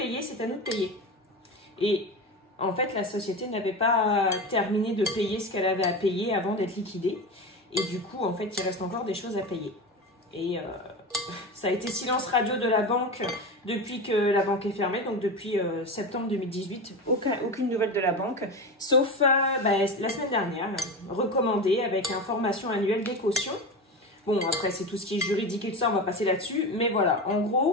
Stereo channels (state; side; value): normal; both; correlation 0.24